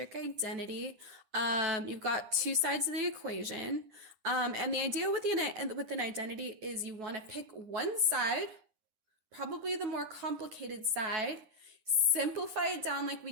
identity. You've got two sides of the equation. And the idea with an identity is you want to pick one side, probably the more complicated side, simplify it down like we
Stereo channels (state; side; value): late; left; 9.7 ms